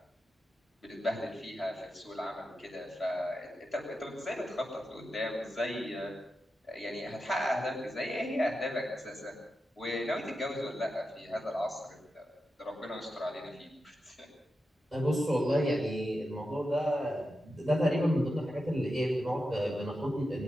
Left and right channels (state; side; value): normal; both; correlation 0.89